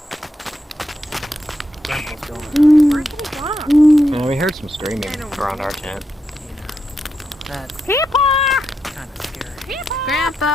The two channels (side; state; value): both; normal; correlation 0.84